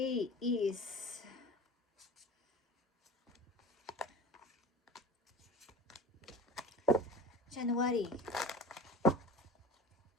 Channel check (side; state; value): both; normal; correlation 0.35